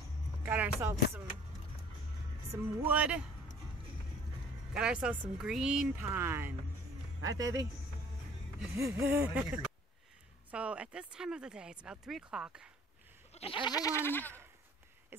Got ourselves some wood. Got ourselves some green pine. Right, baby? So at this time of the day, it's about 3 o'clock, and everyone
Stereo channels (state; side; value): normal; both; correlation 0.52